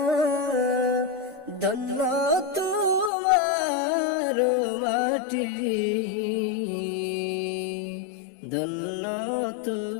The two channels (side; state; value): right; drops out; at 3.1 s